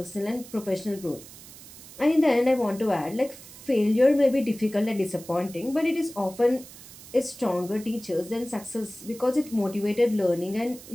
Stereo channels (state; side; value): noise; right; hiss, 18 dB below the sound